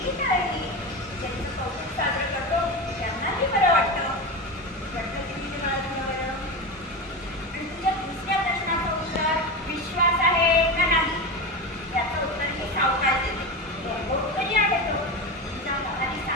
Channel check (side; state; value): both; normal; correlation 0.22